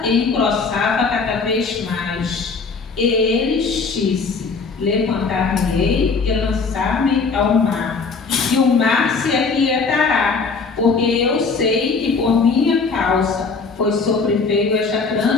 e engrossava cada vez mais. E eles disse: levantar-me-ei e lançar-me ao mar, e o mar se aquietará, porque eu sei que por minha causa foi sobreveio esta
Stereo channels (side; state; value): right; quieter; 4.6 dB